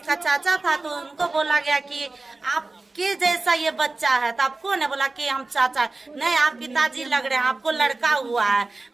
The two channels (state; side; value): quieter; left; 3.4 dB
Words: चाचा था, तो उनको बोला गया कि आपके जैसा ये बच्चा है। तो आप कौन है? बोला कि हम चाचा। नहीं, आप पिताजी लग रहे हैं, आपको लड़का हुआ है,